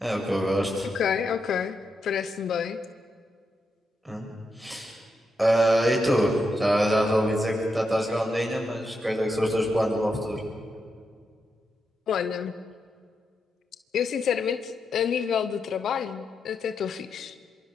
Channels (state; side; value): normal; both; correlation 0.84